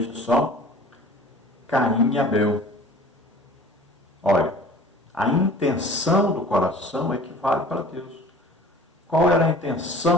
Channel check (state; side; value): normal; both; correlation 0.45